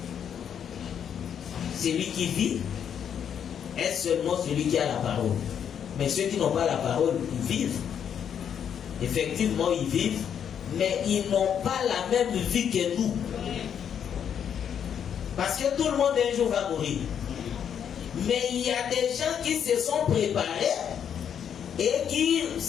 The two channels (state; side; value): quieter; right; 8.4 dB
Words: Celui qui vit est seulement celui qui a la parole. Mais ceux qui n'ont pas la parole, ils vivent. Effectivement, ils vivent, mais ils n'ont pas la même vie que nous. Parce que tout le monde un jour va mourir. Mais il y a des gens qui se sont préparés et qui